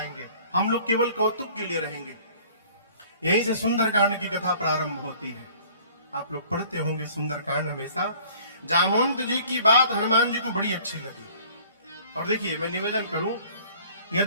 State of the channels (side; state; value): both; inverted; correlation -0.52